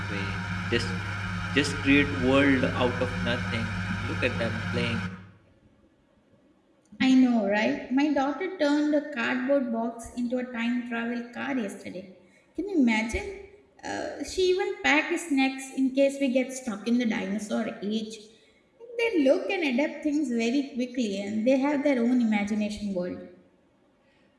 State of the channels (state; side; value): identical; both; correlation 1.00